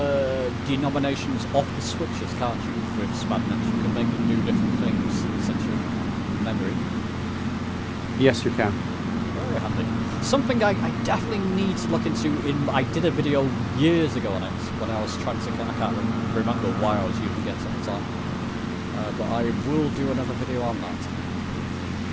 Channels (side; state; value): both; identical; correlation 1.00